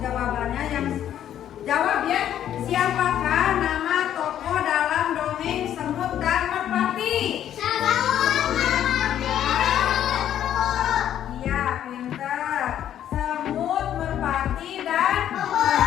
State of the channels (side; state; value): right; quieter; 10.7 dB